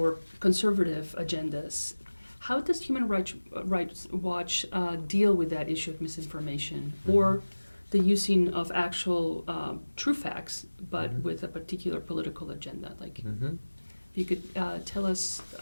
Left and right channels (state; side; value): inverted; both; correlation -1.00